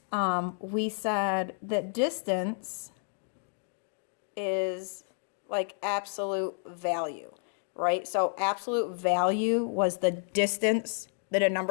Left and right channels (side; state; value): right; silent; 57 dB below the other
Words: we said that distance is like absolute value, right? So absolute value was the distance that a